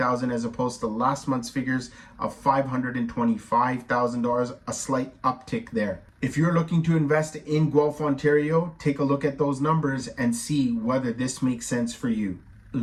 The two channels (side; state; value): both; identical; correlation 1.00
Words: as opposed to last month's figures of $525,000, a slight uptick there. If you're looking to invest in Guelph, Ontario, take a look at those numbers and see whether this makes sense for you.